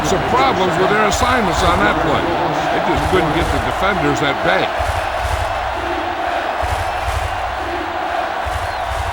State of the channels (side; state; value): both; identical; correlation 1.00